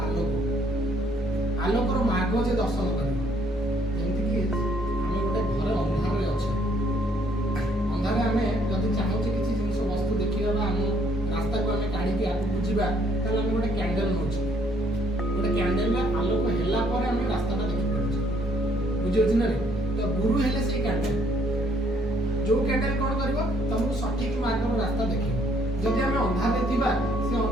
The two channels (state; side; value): normal; both; correlation 0.66